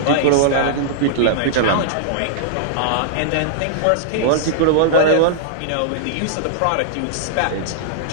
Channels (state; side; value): different; both; correlation -0.01